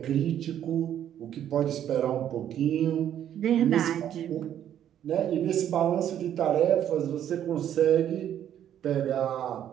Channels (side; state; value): left; quieter; 10.4 dB